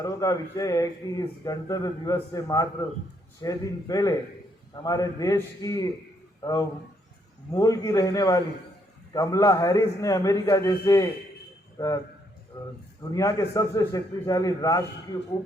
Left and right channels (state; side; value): normal; both; correlation 0.73